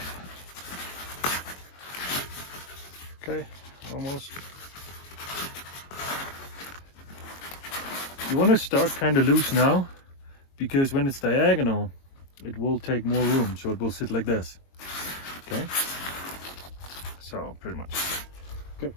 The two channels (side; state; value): right; late; 22 ms